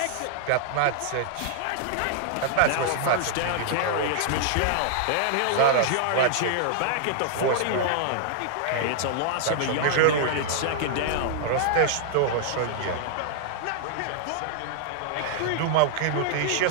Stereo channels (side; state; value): both; different; correlation -0.01